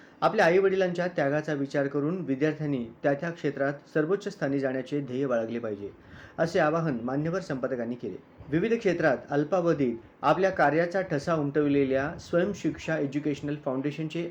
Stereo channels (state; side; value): identical; both; correlation 1.00